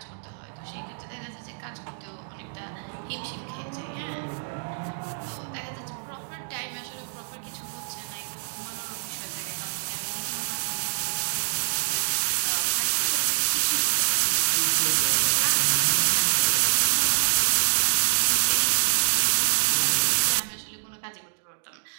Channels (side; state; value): left; silent; digital silence